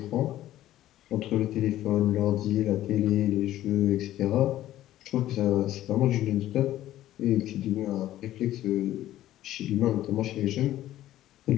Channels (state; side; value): quieter; right; 13.8 dB